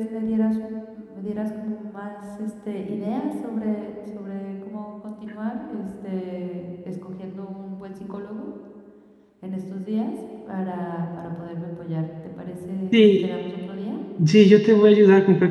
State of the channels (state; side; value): identical; both; correlation 1.00